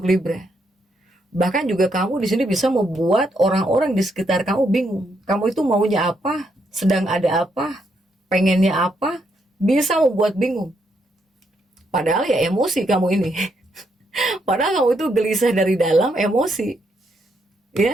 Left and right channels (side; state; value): both; normal; correlation 0.77